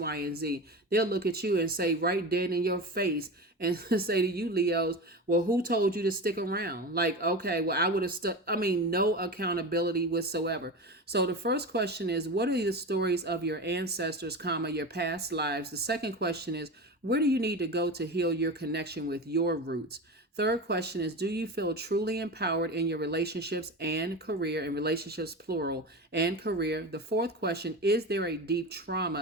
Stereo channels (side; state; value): both; normal; correlation 0.27